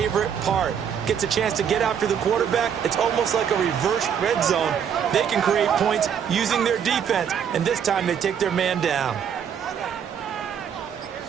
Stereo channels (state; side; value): quieter; left; 8.0 dB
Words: part. Gets a chance to get after the quarterback. It's almost like a reverse red zone. They can create points using their defense, and this time they take their man down.